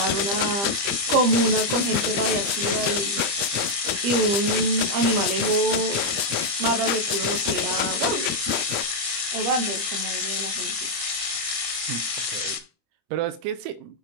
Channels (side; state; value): left; late; 25 ms